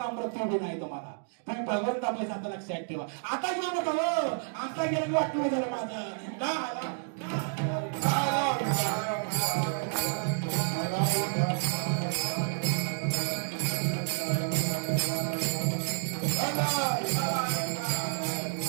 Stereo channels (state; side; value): silent; left; digital silence